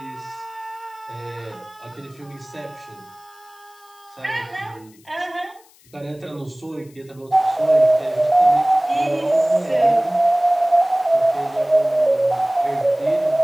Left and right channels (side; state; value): left; noise; hiss, 28 dB below the sound